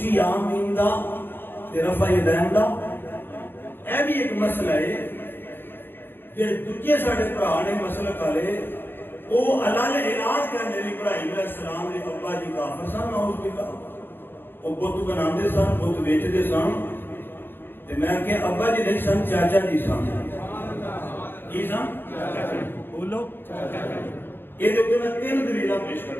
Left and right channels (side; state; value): right; late; 0.099 ms